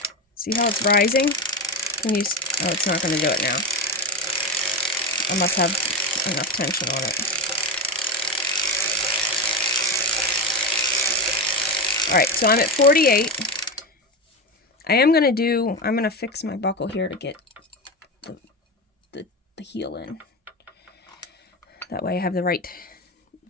See how it's rising? Can you? Oh, it's not going to do it now. I must have enough tension on it. Alright, so I'm at 48. I'm going to fix my buckle here to get the heel in. That way I have the right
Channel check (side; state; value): both; normal; correlation 0.17